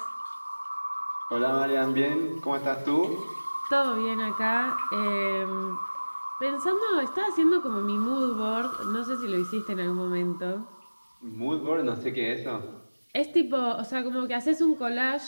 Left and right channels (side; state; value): both; inverted; correlation -1.00